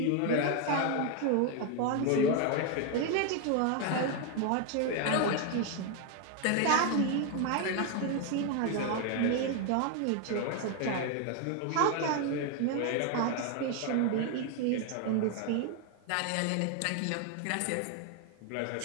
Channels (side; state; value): both; different; correlation 0.01